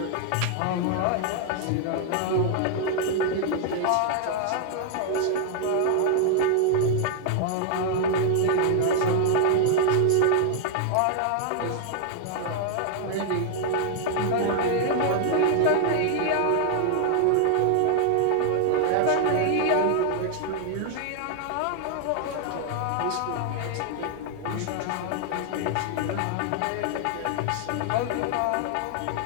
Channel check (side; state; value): both; different; correlation 0.00